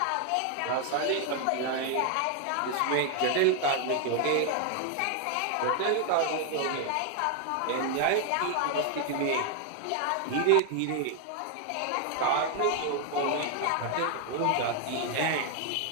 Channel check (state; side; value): different; both; correlation 0.00